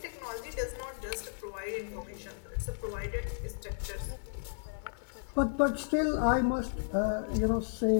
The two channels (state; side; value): silent; right; digital silence